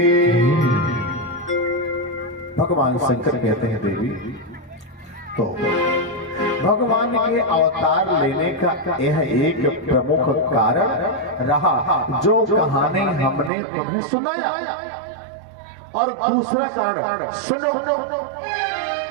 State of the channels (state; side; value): drops out; left; at 13.5 s